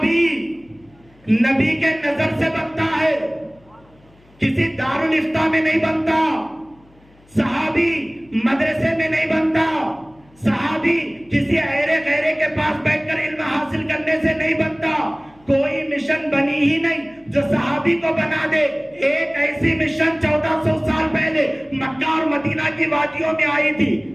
نبی کے نظر سے بنتا ہے, کسی دارالفتہ میں نہیں بنتا, صحابی مدرسے میں نہیں بنتا, صحابی کسی ایرے غیرے کے پاس بیٹھ کر علم حاصل کرنے سے نہیں بنتا. کوئی مشن بنی ہی نہیں جو صحابی کو بنا دے. ایک ایسی مشن 1400 سال پہلے مکہ اور مدینہ کی وادیوں میں آئی تھی,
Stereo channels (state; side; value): noise; left; hum, 29 dB below the sound